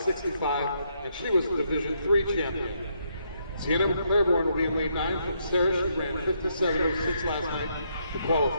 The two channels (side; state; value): both; inverted; correlation -0.75